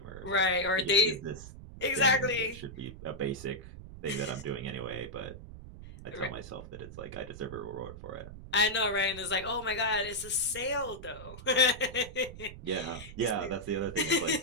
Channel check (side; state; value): right; noise; rumble, 14 dB below the sound